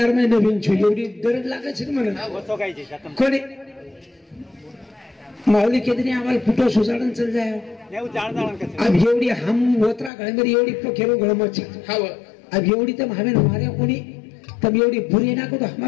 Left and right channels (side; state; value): right; drops out; at 10.1 s